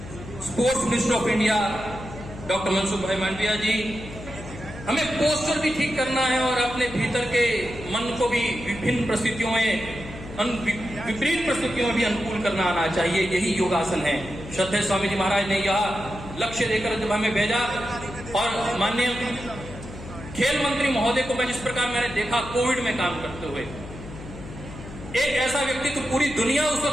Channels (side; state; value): left; noise; hum, 13 dB below the sound